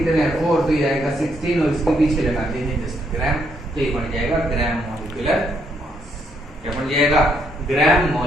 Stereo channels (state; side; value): normal; both; correlation 0.73